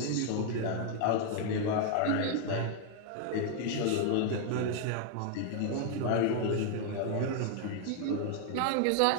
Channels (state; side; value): different; both; correlation 0.00